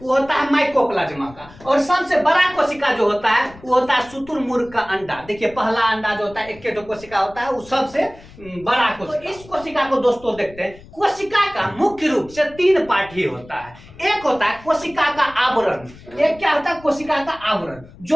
वो होता है माइकोप्लाज्मा का, और सबसे बड़ा कोशिका जो होता है वो होता है शुतुरमुर्ग का अंडा। देखिए पहला अंडा जो होता है एक के कोशिका होता है, वो सबसे बड़ा कोशिका। तो इस कोशिका को दोस्तों देखते हैं। कोशिका का मुख्य रूप से 3 पार्ट ही होता है। एक होता है कोशिका का आवरण। एक क्या होता है? कोशिका का आवरण,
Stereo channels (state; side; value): noise; left; rumble, 21 dB below the sound